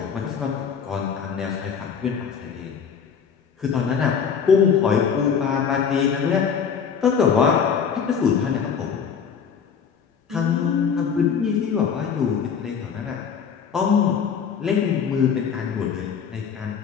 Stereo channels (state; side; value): quieter; right; 6.9 dB